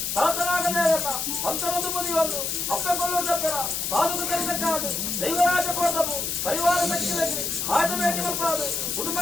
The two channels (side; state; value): left; noise; hiss, 1 dB below the sound